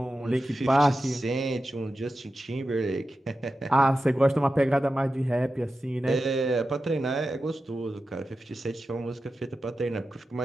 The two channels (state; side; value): normal; both; correlation 0.92